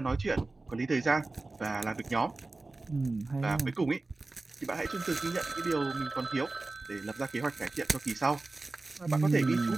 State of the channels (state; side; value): quieter; left; 3.3 dB